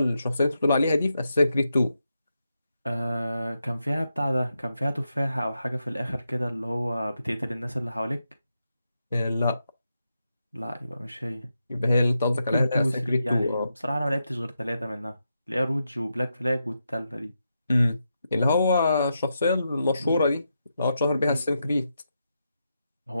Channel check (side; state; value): both; inverted; correlation -0.85